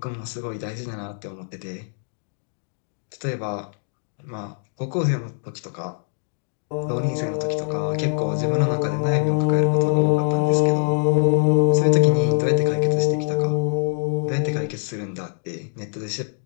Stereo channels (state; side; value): silent; right; digital silence